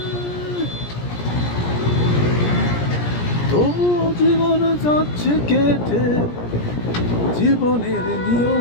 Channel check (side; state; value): right; late; 17 ms